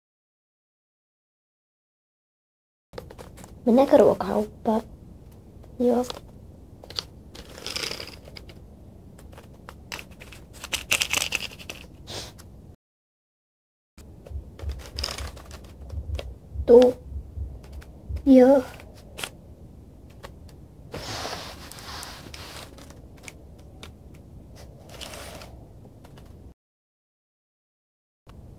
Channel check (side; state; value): both; identical; correlation 1.00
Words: Mennäänkö ruokakauppaan? Joo. Tuu. Joo.